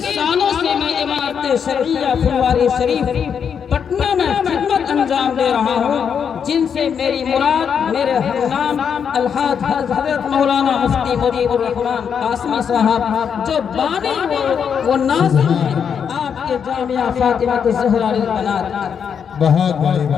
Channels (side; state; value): right; quieter; 7.3 dB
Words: سالوں سے میں عمارت شرعیہ پھلواری شریف پٹنہ میں خدمت انجام دے رہا ہوں، جن سے میری مراد میرے ہمنام الحاج حضرت مولانا مفتی مجیب الرحمن قاسمی صاحب جو بانی و ناظر ہیں آپ کے جامعہ فاطمہ الزہرا للبنات۔ بہت بڑی